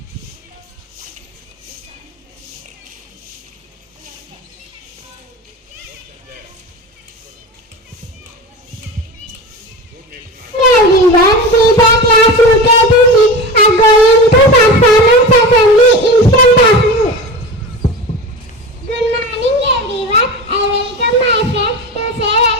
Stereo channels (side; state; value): both; normal; correlation 0.29